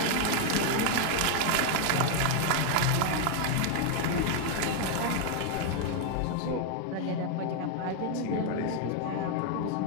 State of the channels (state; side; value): different; both; correlation 0.00